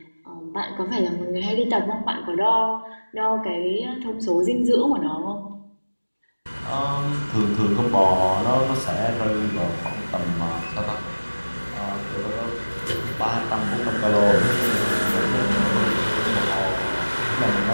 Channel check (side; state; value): both; inverted; correlation -1.00